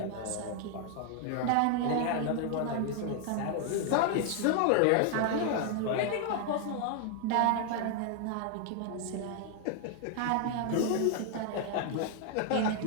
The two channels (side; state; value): both; different; correlation 0.00